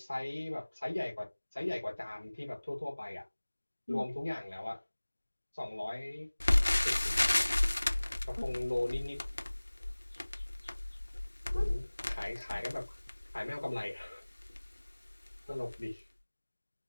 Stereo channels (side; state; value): both; inverted; correlation -1.00